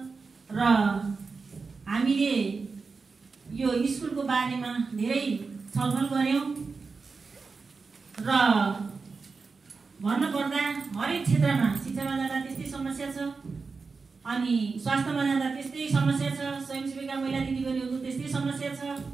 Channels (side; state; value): left; quieter; 4.6 dB